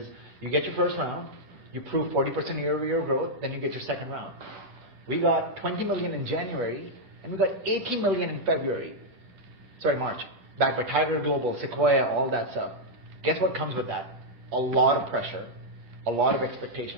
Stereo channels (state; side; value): late; left; 10 ms